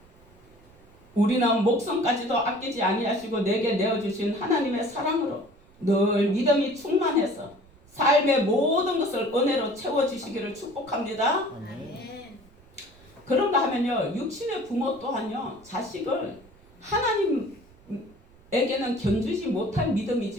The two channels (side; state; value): right; noise; rumble, 27 dB below the sound